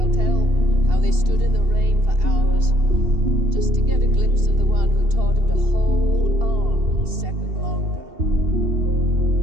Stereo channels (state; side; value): late; left; 2.7 ms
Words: tell how they stood in the rain for hours just to get a glimpse of the one who taught him to hold on a second longer.